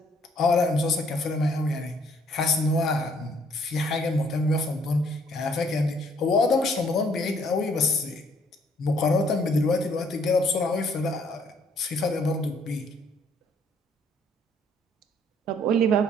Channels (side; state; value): both; normal; correlation 0.64